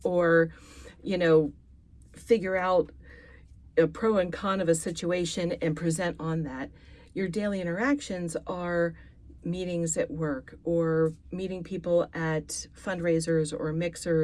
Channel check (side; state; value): both; identical; correlation 1.00